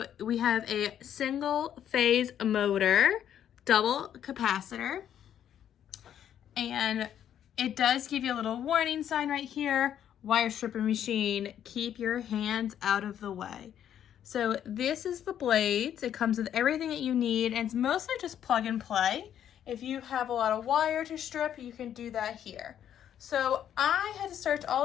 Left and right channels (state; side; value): quieter; right; 10.0 dB